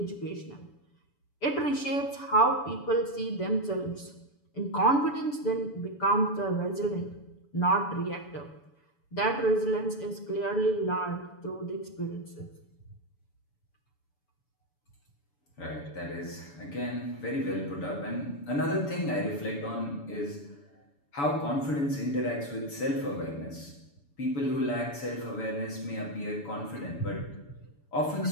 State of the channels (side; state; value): right; late; 6.9 ms